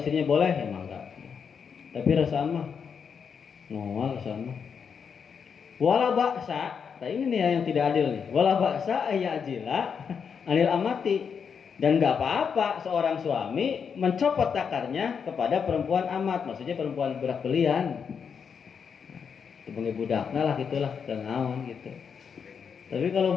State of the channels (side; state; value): right; quieter; 6.6 dB